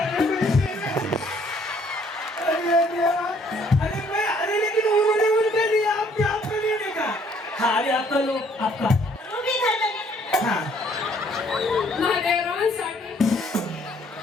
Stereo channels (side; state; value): both; normal; correlation 0.63